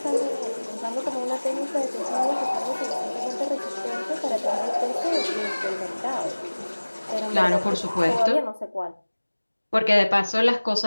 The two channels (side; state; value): both; inverted; correlation -1.00